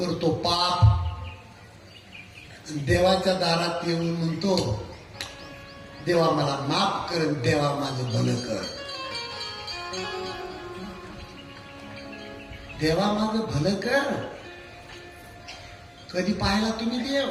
पाप, देवाच्या दारात येऊन म्हणतो, देवा मला माफ कर, देवा माझं भलं कर, देवा माझं भलं कर। कधी पाहिला तुम्ही देव?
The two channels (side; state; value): both; identical; correlation 1.00